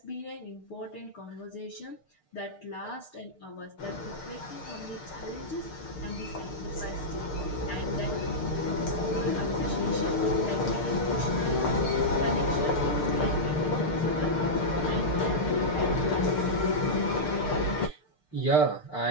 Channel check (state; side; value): late; right; 6.7 ms